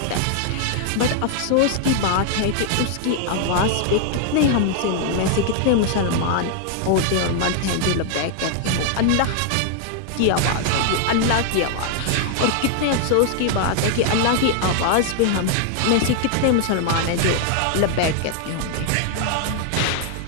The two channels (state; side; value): different; both; correlation 0.00